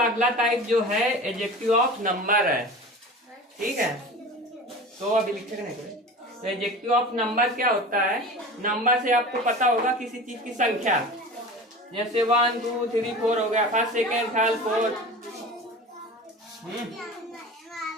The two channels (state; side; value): normal; both; correlation 0.35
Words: अगला टाइप जो है एडजेक्टिव ऑफ नंबर है। ठीक है, तो अभी लिखे नहीं कोई। तो एडजेक्टिव ऑफ नंबर क्या होता है? नंबर से आपको पता होगा किसी चीज की संख्या, जैसे 1 2 3 4 हो गया, फर्स्ट सेकेंड थर्ड फोर्थ।